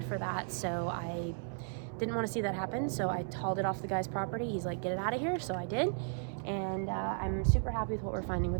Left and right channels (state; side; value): silent; left; 54 dB below the other